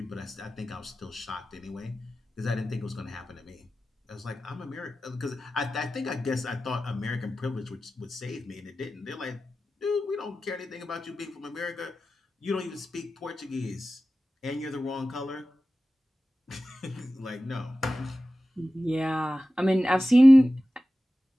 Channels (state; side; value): normal; both; correlation 0.95